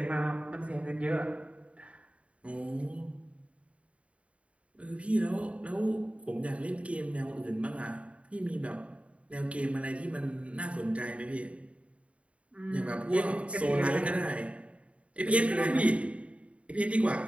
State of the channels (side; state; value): left; late; 0.063 ms